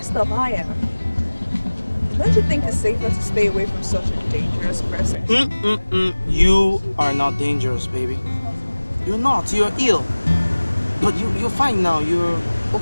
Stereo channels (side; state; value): both; inverted; correlation -1.00